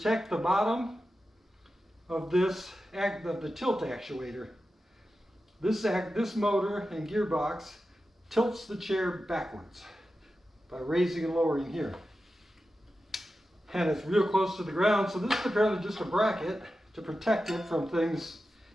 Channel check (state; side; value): normal; both; correlation 0.92